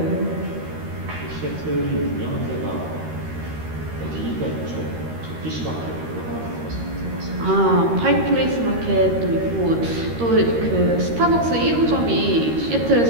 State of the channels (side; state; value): left; late; 13 ms